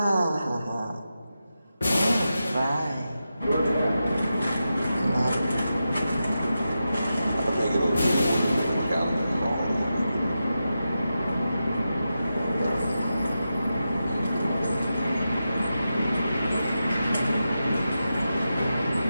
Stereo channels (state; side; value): inverted; both; correlation -0.90